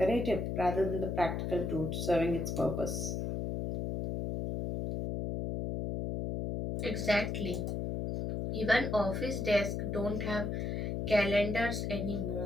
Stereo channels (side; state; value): left; noise; hum, 2 dB below the sound